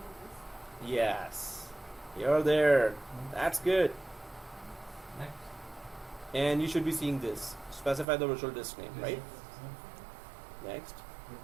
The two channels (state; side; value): drops out; left; at 8.1 s